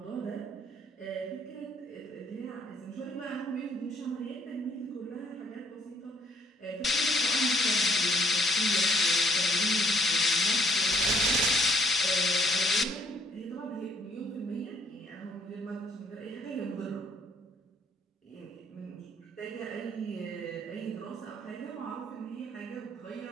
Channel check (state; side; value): normal; both; correlation 0.65